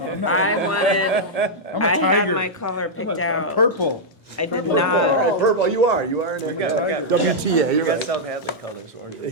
I'm not- I wanted, I'm a I had tiger. my color I'm picked a- out. Purple. I did Purple, all not, right, purple, you are in it. got- WTA, You you're got right. South Hadley colors, orange and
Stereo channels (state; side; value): normal; both; correlation -0.06